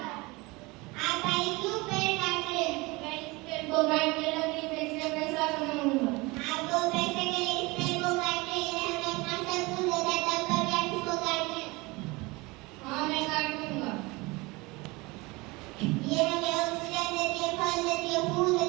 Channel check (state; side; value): quieter; left; 24.1 dB